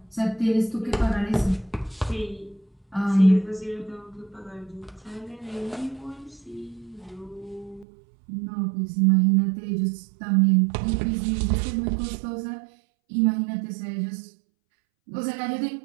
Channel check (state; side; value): drops out; left; at 7.9 s